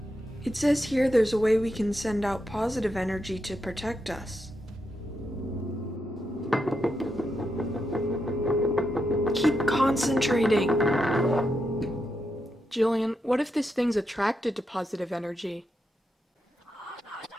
It says here there's a way we can send out positive energy to protect us. Keep concentrating. Jillian, what if this thing's attracted to positive energy?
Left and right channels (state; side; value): normal; both; correlation 0.84